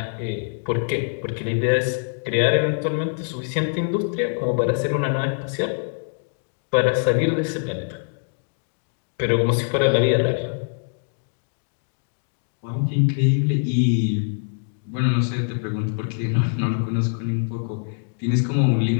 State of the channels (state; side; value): silent; right; digital silence